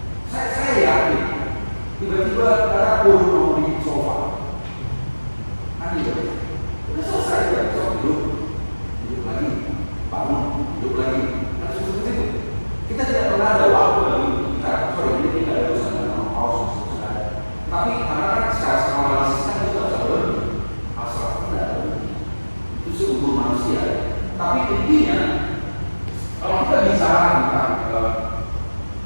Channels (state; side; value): inverted; both; correlation -1.00